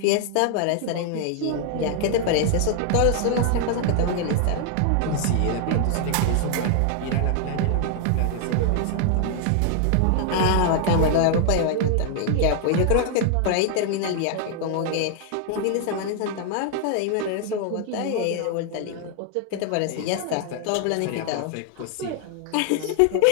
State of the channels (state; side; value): different; both; correlation 0.00